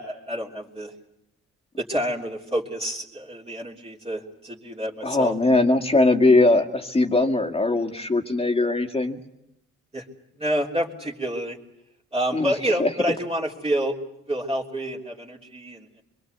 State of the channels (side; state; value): both; normal; correlation 0.67